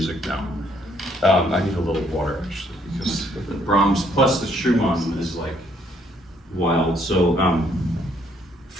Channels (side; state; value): both; normal; correlation 0.68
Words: now. I need a little water actually because the Brahms plus the Schumann is like wild. So